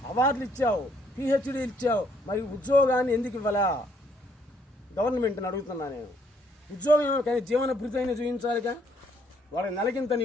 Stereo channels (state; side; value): normal; both; correlation 0.68